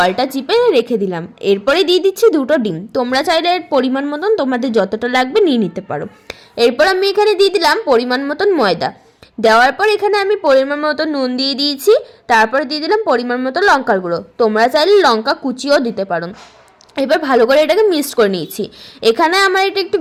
চিপে রেখে দিলাম। এরপরে দিয়ে দিচ্ছি দুটো ডিম। তোমরা চাইলে এর পরিমাণ মতন তোমাদের যতটা লাগবে নিয়ে নিতে পারো। এরপর আমি এখানে দিয়ে দিলাম পরিমাণ মতন ময়দা। দেওয়ার পর এখানে আমি পরিমাণ মতো নুন দিয়ে দিয়েছি। তারপর দিয়ে দিলাম পরিমাণ মতো লঙ্কার গুঁড়ো। তোমরা চাইলে লঙ্কা কুচিও দিতে পারো। এবার ভালো করে এটাকে মিক্সড করে নিয়েছি। এখানে আমার এটা একটু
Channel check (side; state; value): both; identical; correlation 1.00